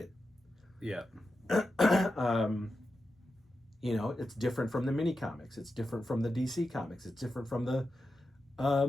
Yeah. You know, it's different from the mini comics. It's different from the DC comics. It's different from the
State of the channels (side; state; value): both; normal; correlation 0.90